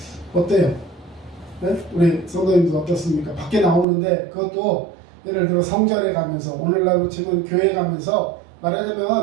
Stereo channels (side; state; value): left; drops out; at 3.9 s